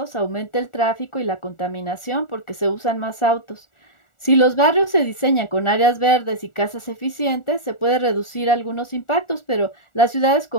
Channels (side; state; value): right; late; 1.4 ms